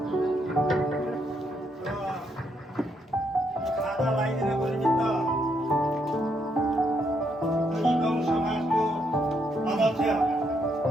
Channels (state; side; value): normal; both; correlation 0.76